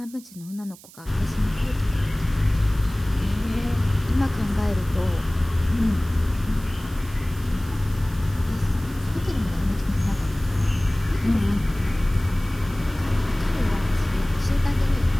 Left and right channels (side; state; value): right; noise; hiss, 21 dB below the sound